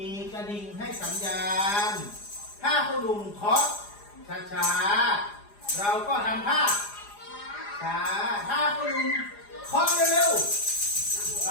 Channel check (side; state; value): right; late; 4.9 ms